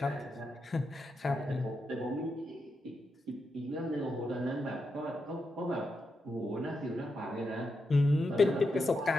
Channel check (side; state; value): both; normal; correlation 0.85